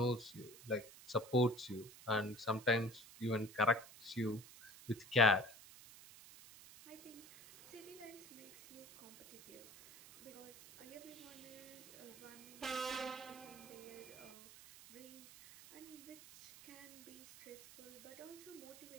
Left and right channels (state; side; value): noise; right; hiss, 17 dB below the sound